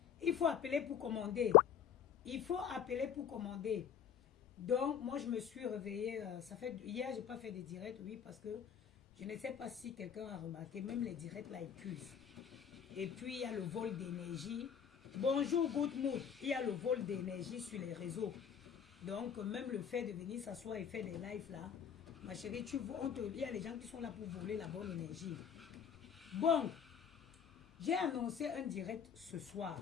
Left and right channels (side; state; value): right; quieter; 8.3 dB